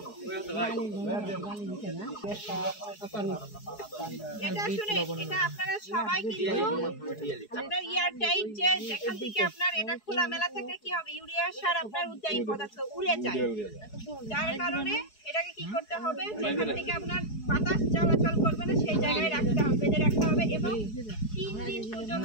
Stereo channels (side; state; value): right; late; 4.7 ms